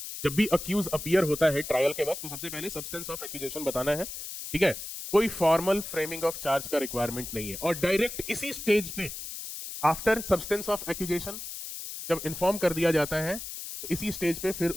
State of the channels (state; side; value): noise; left; hiss, 8 dB below the sound